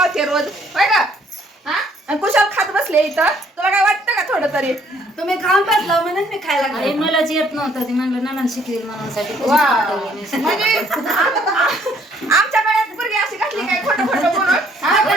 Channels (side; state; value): both; normal; correlation 0.64